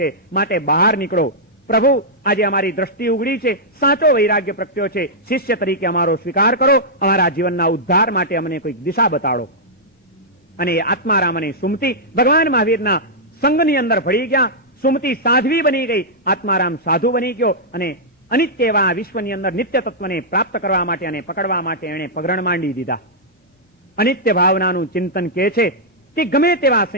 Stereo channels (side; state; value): both; normal; correlation -0.10